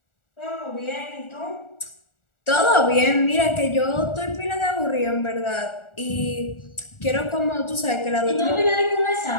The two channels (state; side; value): late; right; 1.4 ms